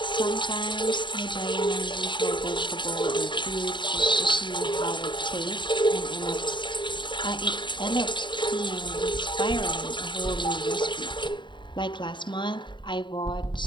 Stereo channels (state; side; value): late; right; 0.23 ms